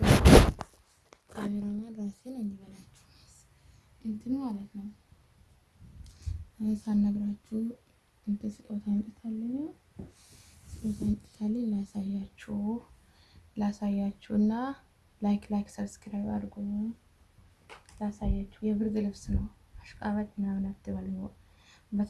ካሜራማን ራሴን እንዲበላችሁ እንትን ማለት ነው። ሳልነግራችሁ እንትን ስጦታ አምጥታለኝ ላሳያችሁና ላይክ ሰብስክራይብ አድርጉ። ላሳያችሁ የብርድ ልብስ ነው። አሽቃባጭ ምናምን አትበሉ።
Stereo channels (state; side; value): identical; both; correlation 1.00